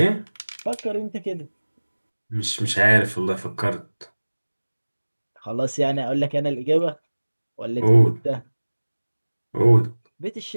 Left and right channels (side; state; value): both; inverted; correlation -1.00